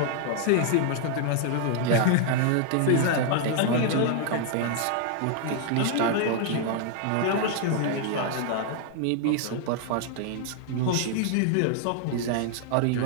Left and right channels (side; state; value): both; different; correlation 0.00